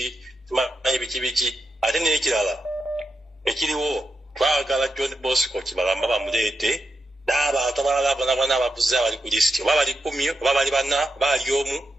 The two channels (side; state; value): both; normal; correlation 0.86